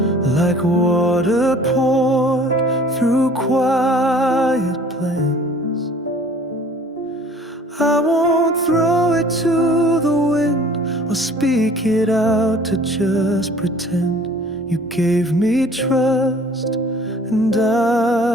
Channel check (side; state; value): both; normal; correlation 0.51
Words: like water poured through quiet plans. I won't throw it to the wind or speak it out to just pretend. You gave me trust and